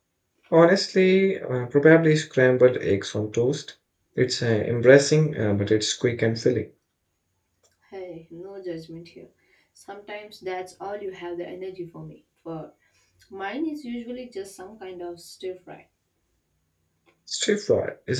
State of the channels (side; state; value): both; identical; correlation 1.00